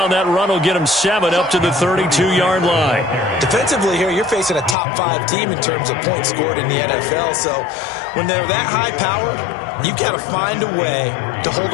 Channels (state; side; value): drops out; right; at 4.8 s